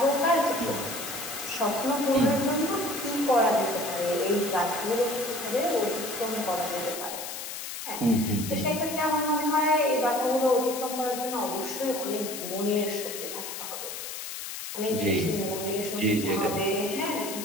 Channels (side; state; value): left; noise; hiss, 7 dB below the sound